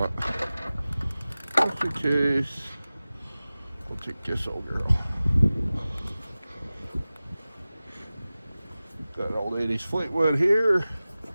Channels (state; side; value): inverted; both; correlation -0.97